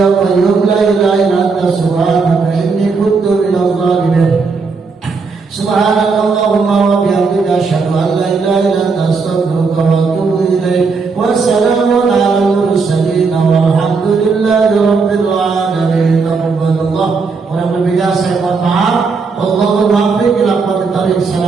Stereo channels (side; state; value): left; quieter; 4.7 dB